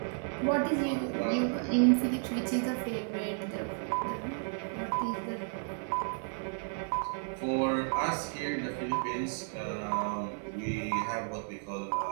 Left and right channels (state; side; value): silent; left; 55 dB below the other